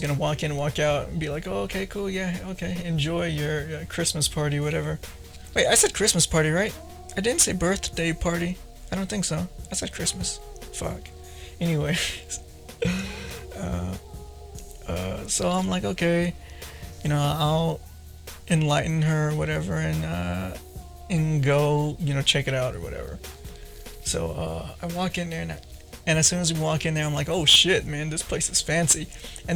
walk in and walk out and be like, "Oh, okay, cool, yeah, okay, enjoy your Christmas party, whatever." Wait, I said Christmas party, right? I didn't say birthday party. I don't think so. I said Christmas. Fuck. Anyway, so I'm like, okay, I'll enlighten her, or whatever, and go, check it out or whatever. So I walk in there, and as soon as we walk in there, I'm like, oh shit, man, this place is fancy.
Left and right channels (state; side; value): identical; both; correlation 1.00